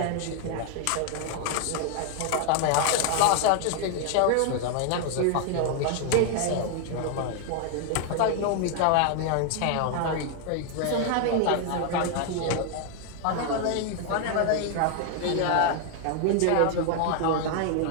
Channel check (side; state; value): both; different; correlation 0.00